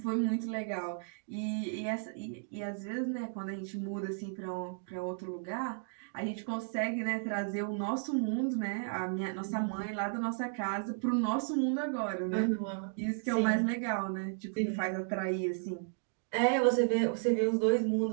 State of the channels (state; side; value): silent; left; digital silence